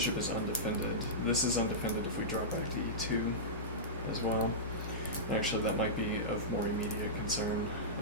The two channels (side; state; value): both; normal; correlation -0.15